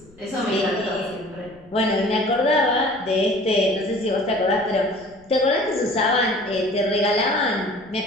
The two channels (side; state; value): left; noise; rumble, 27 dB below the sound